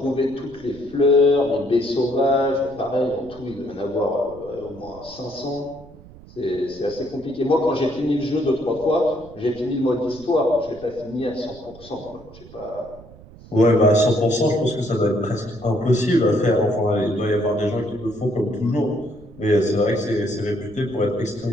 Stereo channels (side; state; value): right; noise; rumble, 20 dB below the sound